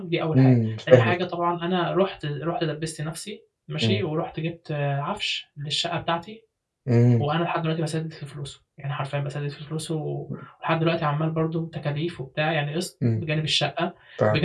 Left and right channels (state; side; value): identical; both; correlation 1.00